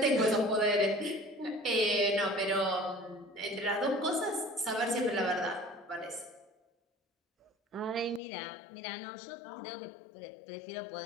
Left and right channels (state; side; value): drops out; right; at 8.2 s